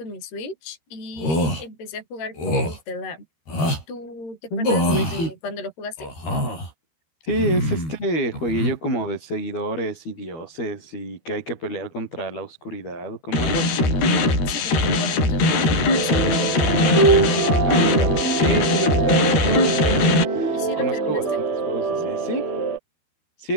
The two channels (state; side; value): late; right; 13 ms